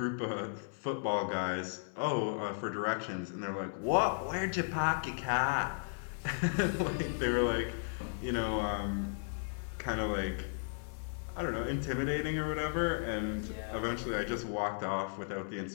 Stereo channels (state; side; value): silent; right; 54 dB below the other